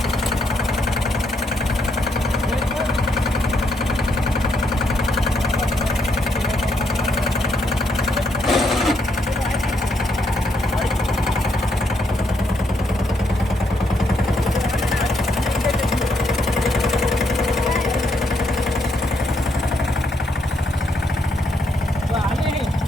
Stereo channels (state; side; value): normal; both; correlation 0.76